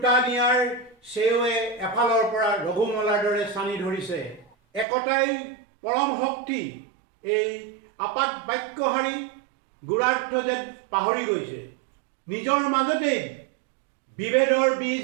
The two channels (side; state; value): left; drops out; at 4.9 s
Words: নিয়াৰ চেৱে এফালৰ পৰা ৰঘুমলাৰ দৰে চানি ধৰিছে। একতাই পৰম শক্তি এই আপাত বাক্যহাৰী গুৰাৰ্থ যেন পাহৰি গৈছে। নিজৰ মাজতেই বিভেদৰ